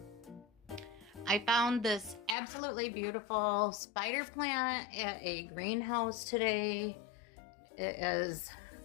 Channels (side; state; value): right; drops out; at 2.4 s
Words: I found this absolutely beautiful spider plant at a greenhouse today. It is